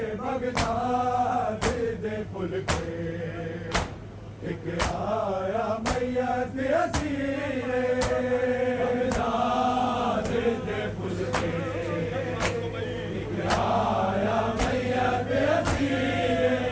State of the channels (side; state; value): both; identical; correlation 1.00